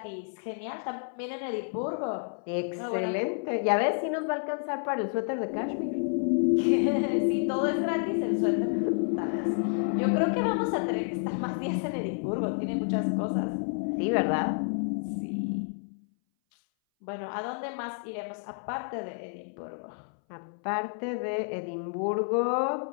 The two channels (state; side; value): silent; right; 58 dB below the other